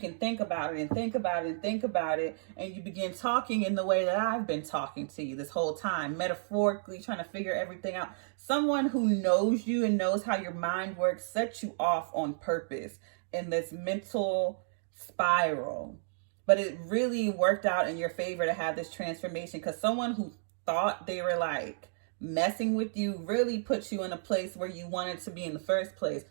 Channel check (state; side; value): silent; left; digital silence